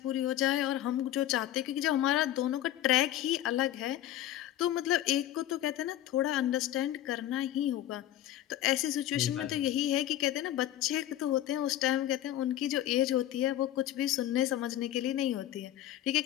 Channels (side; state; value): right; quieter; 12.9 dB